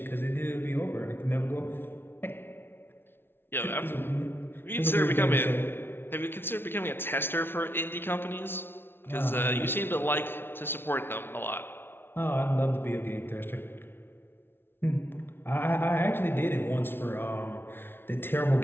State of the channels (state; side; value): late; right; 0.11 ms